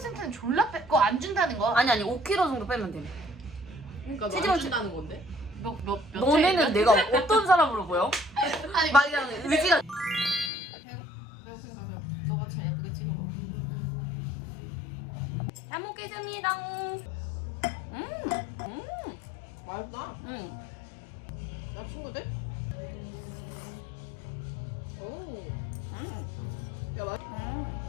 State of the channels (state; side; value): drops out; right; at 10.5 s